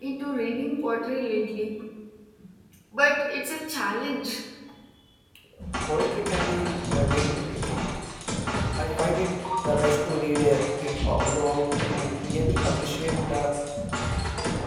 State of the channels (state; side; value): identical; both; correlation 1.00